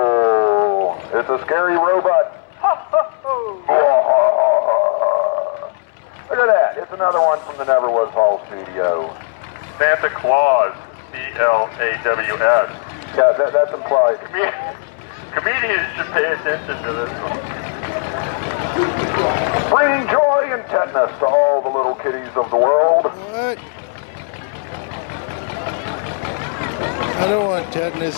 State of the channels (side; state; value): right; silent; digital silence